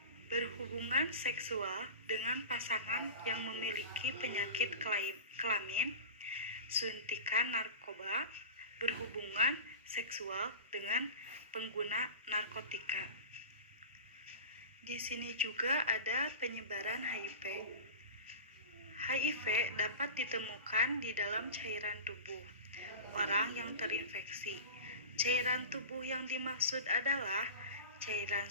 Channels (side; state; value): both; inverted; correlation -0.32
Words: berhubungan seksual dengan pasangan yang memiliki penyakit kelamin, suntikan narkoba, berhubungan seksual dengan pengguna narkotika. Di sini juga ada penyebaran HIV. HIV dapat ditemukan di dalam cairan tubuh orang yang terinfeksi. Cairan tubuh yang dimaksud adalah cairan